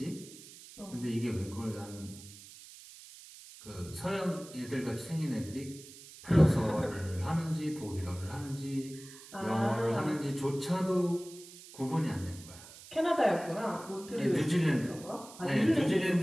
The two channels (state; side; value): noise; right; hiss, 18 dB below the sound